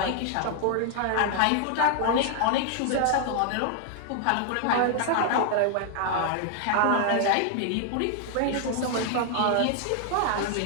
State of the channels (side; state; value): both; different; correlation 0.00